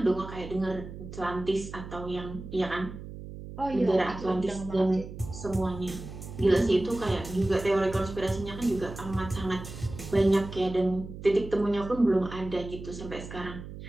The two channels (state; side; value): noise; right; hum, 11 dB below the sound